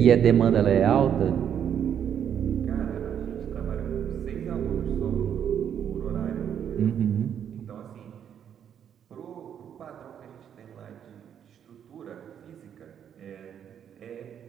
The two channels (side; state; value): left; quieter; 8.9 dB